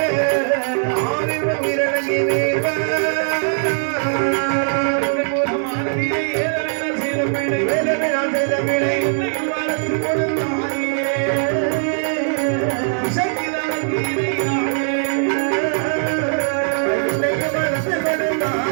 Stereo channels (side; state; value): left; silent; 66 dB below the other